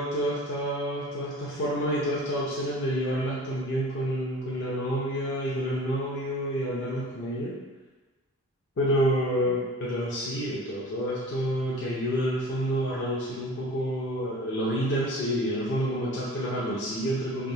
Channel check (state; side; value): normal; both; correlation 0.41